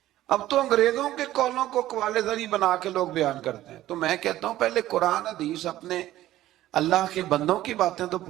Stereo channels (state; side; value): quieter; left; 14.4 dB